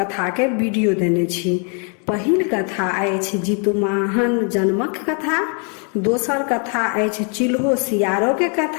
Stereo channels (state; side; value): quieter; right; 38.8 dB